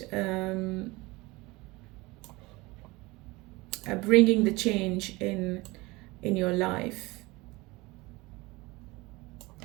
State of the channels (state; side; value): quieter; left; 22.5 dB